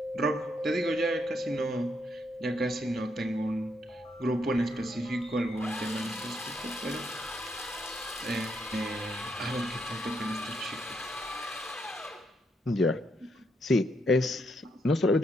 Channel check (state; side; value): normal; both; correlation 0.77